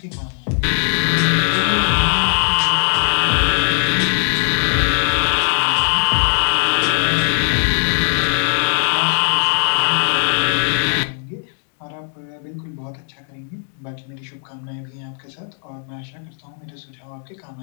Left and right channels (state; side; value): silent; right; digital silence